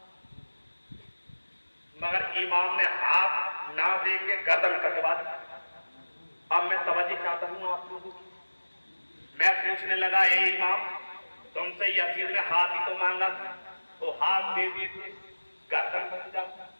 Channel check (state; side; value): inverted; both; correlation -1.00